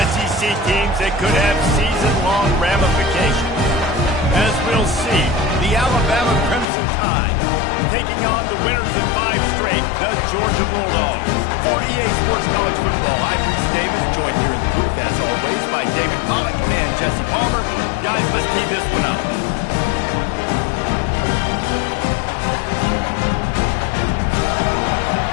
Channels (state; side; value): drops out; right; at 6.7 s